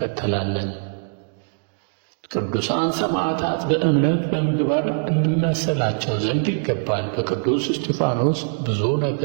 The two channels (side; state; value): left; silent; digital silence